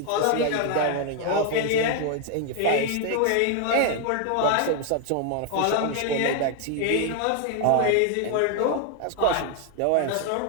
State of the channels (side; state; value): both; different; correlation 0.01